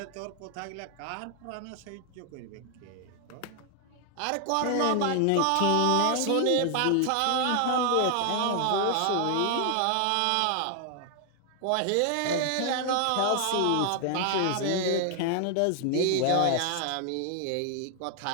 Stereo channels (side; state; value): both; different; correlation 0.00